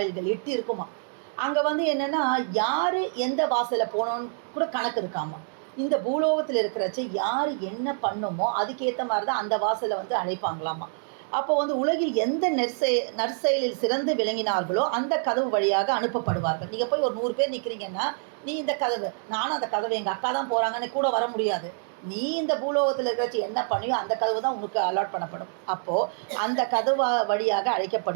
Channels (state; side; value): silent; left; 60 dB below the other